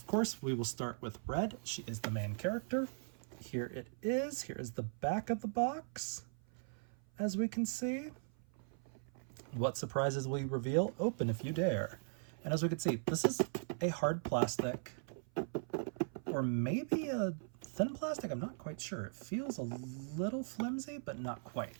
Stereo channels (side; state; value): left; silent; 52 dB below the other